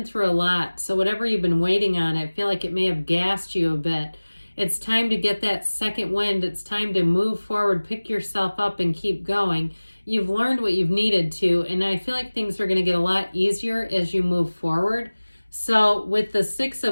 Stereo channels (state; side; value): inverted; both; correlation -1.00